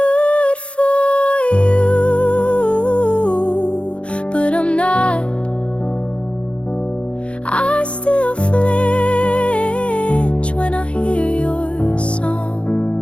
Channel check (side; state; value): right; late; 0.060 ms